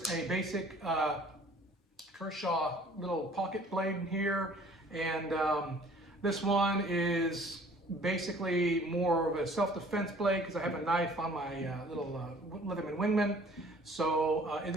a basic Kershaw little pocket blade here, and this one is basically more of a self-defense blade because I have a knife on my little Leatherman Wingman. So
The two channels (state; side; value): normal; both; correlation 0.53